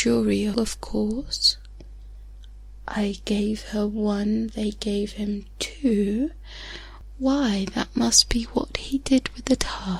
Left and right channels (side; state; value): both; identical; correlation 1.00